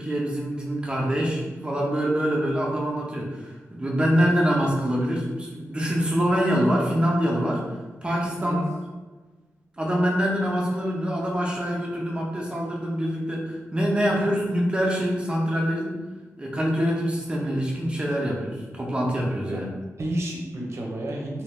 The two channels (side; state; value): both; normal; correlation 0.89